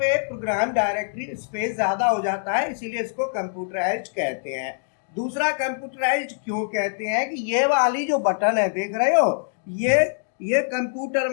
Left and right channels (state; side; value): silent; right; digital silence